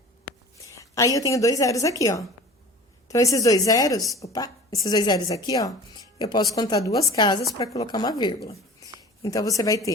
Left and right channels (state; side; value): normal; both; correlation 0.41